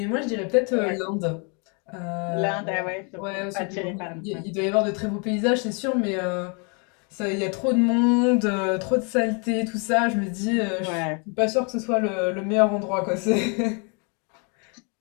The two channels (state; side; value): quieter; right; 35.9 dB